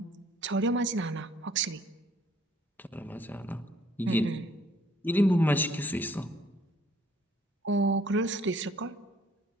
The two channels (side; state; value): both; normal; correlation 0.61